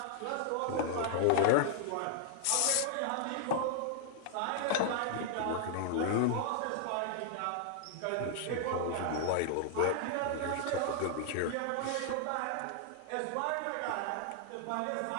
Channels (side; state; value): both; different; correlation 0.00